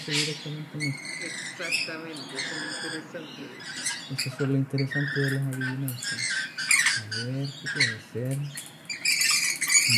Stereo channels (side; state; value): both; identical; correlation 1.00